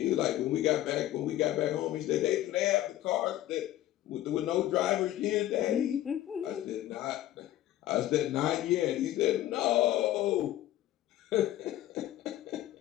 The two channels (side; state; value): right; quieter; 13.8 dB